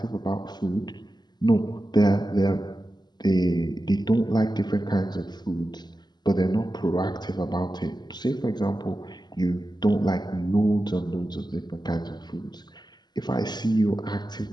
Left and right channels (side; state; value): right; late; 0.21 ms